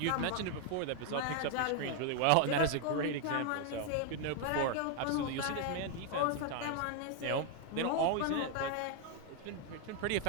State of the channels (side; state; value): both; different; correlation 0.00